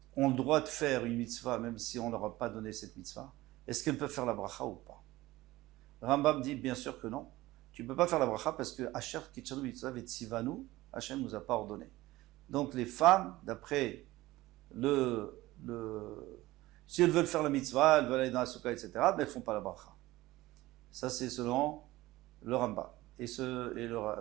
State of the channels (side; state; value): left; quieter; 18.1 dB